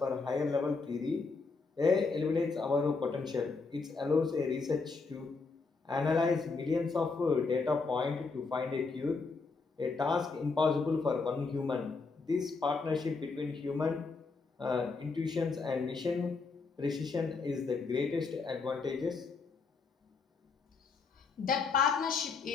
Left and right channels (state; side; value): quieter; right; 4.4 dB